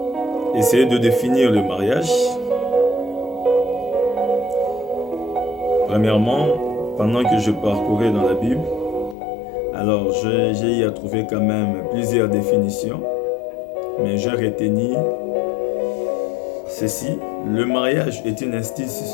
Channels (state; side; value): drops out; right; at 9.2 s